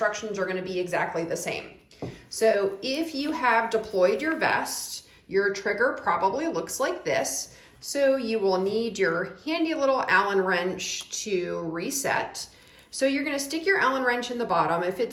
are going to be exactly the same. So if you have deployed your vest, your trigger probably looks like this. So you will need your handy little Allen wrench to reset. So you're going to stick your Allen wrench in the bottom. If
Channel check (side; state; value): both; identical; correlation 1.00